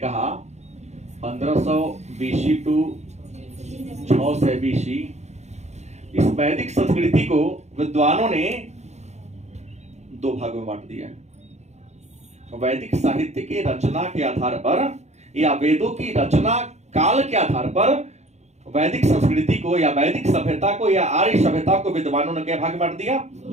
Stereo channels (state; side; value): late; left; 0.33 ms